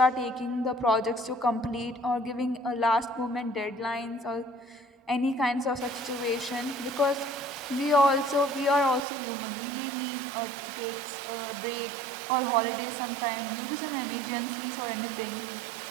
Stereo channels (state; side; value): drops out; left; at 9.0 s